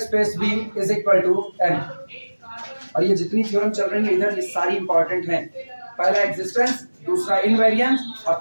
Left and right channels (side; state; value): both; inverted; correlation -1.00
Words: v is equal to n। और ये जितनी थ्योरम चल रही है इधर ये सारी इंपॉर्टेंट हैं। पहला एग्जिस्टेंस, दूसरा इनवेरिएंस और